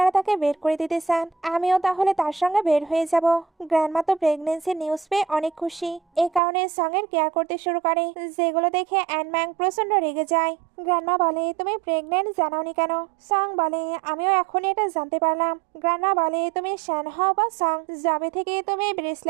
তাকে বের করে দিতে চান আমিও তাহলে তার সঙ্গে বের হয়ে যাব। গ্র্যান্ডমা তো প্রেগনেন্সির নিউজ পেয়ে অনেক খুশি, এই কারণে সঙ্গের কেয়ার করতে শুরু করে, যেগুলো দেখে অ্যানম্যাং প্রচন্ড রেগে যায়। গ্র্যান্ডমা বলে তুমি প্রেগনেন্ট জানাওনি কেন? সং বলে আমিও এখনই এটা জানতে পারলাম। গ্র্যান্ডমা বলে তুমি শ্যান হও বা সং, যবে থেকে তুমি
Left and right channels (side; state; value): left; drops out; at 6.4 s